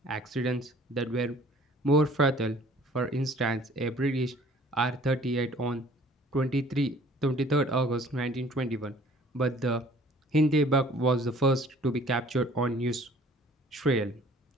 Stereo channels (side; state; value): both; normal; correlation 0.53